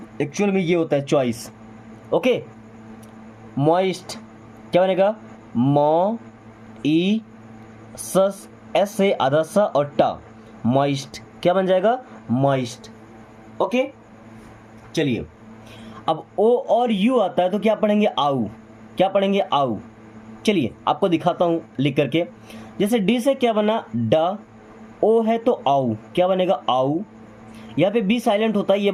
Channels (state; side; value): identical; both; correlation 1.00